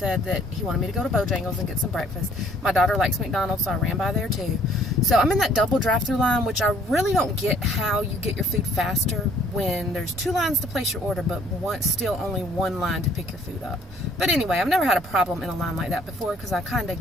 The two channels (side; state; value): both; normal; correlation 0.60